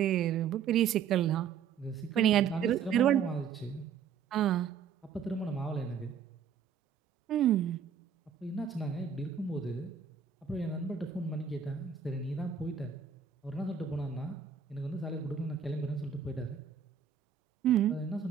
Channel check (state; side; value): quieter; left; 7.4 dB